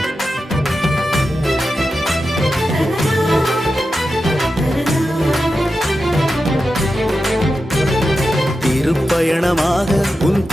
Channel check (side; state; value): both; normal; correlation 0.90